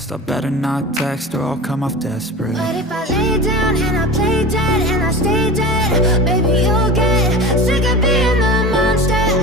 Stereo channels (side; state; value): both; normal; correlation 0.32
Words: I better not text or I'll come off desperate. But if I lay down and I play dead and I stay dead, baby you'll get sick of being the monster